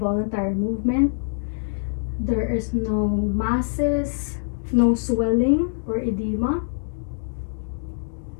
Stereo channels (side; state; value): right; silent; 62 dB below the other